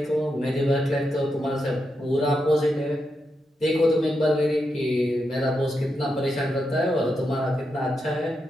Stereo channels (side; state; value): both; normal; correlation 0.85